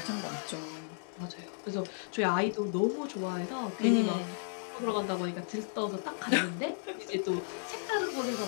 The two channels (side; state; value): right; silent; digital silence